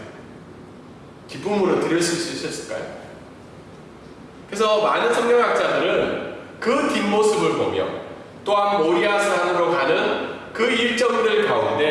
기쁨으로 들으실 수 있었을까요? 그래서 많은 성경학자들은 그 뒷모습을 보며 또한 모리아 산으로 가는 그 일정들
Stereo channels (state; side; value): identical; both; correlation 1.00